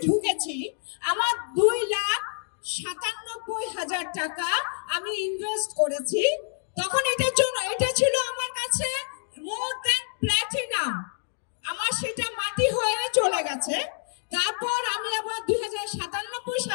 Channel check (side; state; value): right; silent; digital silence